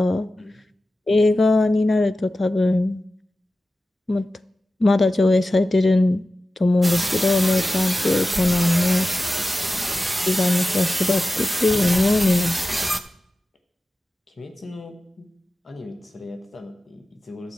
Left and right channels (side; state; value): both; normal; correlation 0.94